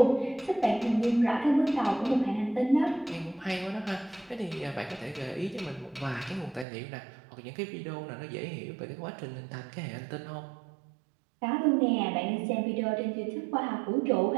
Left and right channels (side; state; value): left; drops out; at 6.7 s